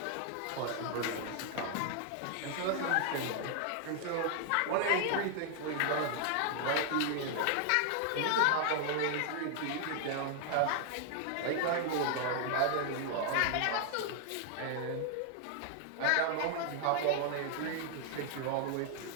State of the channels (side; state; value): both; different; correlation 0.00